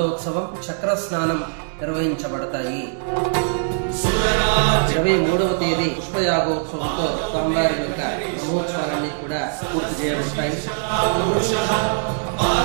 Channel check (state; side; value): silent; left; digital silence